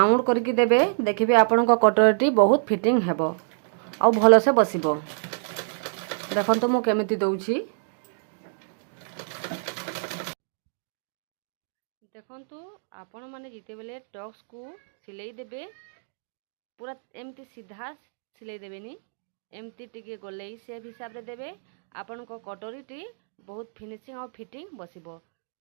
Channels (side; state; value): left; silent; digital silence